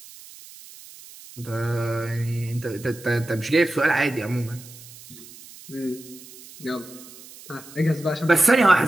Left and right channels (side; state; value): right; noise; hiss, 19 dB below the sound